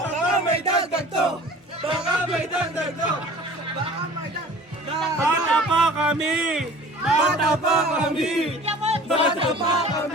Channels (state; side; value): normal; both; correlation 0.45